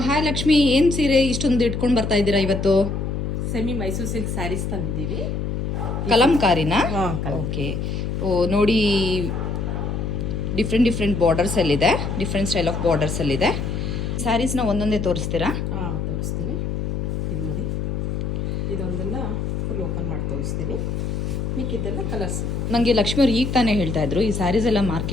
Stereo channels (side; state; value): left; noise; hum, 2 dB below the sound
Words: ಲಕ್ಷ್ಮಿ, ಏನು ಸೀರೆ ಇಷ್ಟೊಂದು ಇಟ್ಕೊಂಡು ಬರ್ತಾ ಇದ್ದೀರಾ ಇವತ್ತು? ಸೆಮಿ ಮೈಸೂರು ಸಿಲ್ಕ್ ಸ್ಯಾರೀಸ್ ತಂದಿದ್ದೀವಿ. ಕಲಂಕಾರಿನಾ? ಹಾಂ, ಓಕೆ. ಓ ನೋಡಿ, ಡಿಫ್ರೆಂಟ್ ಬಾರ್ಡರ್ಸಲ್ಲಿದೆ, ಡಿಫ್ರೆಂಟ್ ಸ್ಟೈಲ್ ಆಫ್ ಬಾರ್ಡರ್ಸಲ್ಲಿದೆ. ಸ್ಯಾರೀಸ್ನ ಒಂದೊಂದೇ ತೋರಿಸ್ತೀರಾ? ಹಾಂ, ತೋರಿಸ್ತೀನಿ. ಇದು ನೋಡಿ, ಇದೊಂದೆಲ್ಲ ಫುಲ್ ಓಪನ್ ಮಾಡಿ ತೋರಿಸ್ತೀನಿ. ಮಿಕ್ಕಿದ್ದೆಲ್ಲ ಕಲರ್ಸ್. ನನಗೆ ಲಕ್ಷ್ಮಿ ಅವ್ರು ಈಗ ತಾನೇ ಹೇಳ್ತಾ ಇದ್ರು, ಈ ಸ್ಯಾರೀಸ್ ಎಲ್ಲ